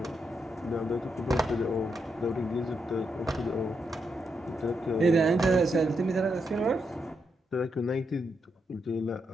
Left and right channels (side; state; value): both; normal; correlation 0.82